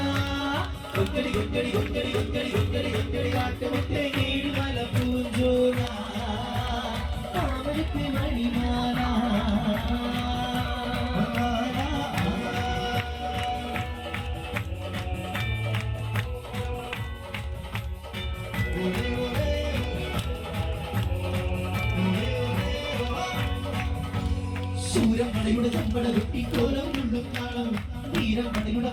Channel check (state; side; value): identical; both; correlation 1.00